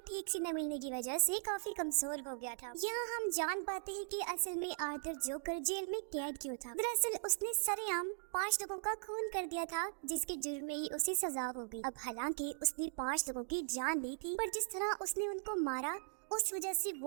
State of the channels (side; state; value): left; silent; digital silence